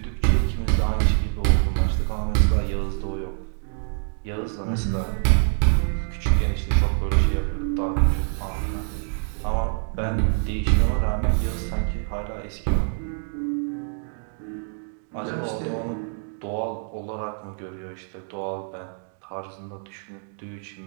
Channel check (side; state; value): left; silent; 59 dB below the other